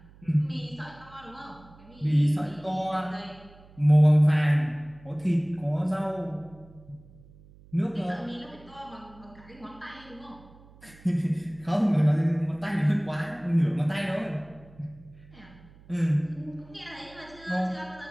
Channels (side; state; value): right; noise; hum, 24 dB below the sound